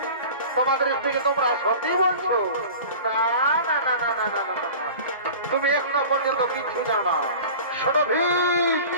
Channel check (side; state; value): both; inverted; correlation -0.38